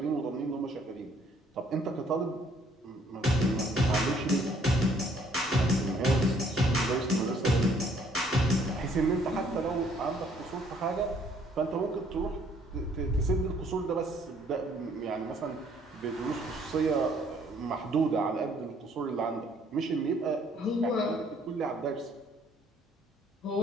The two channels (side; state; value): both; normal; correlation 0.63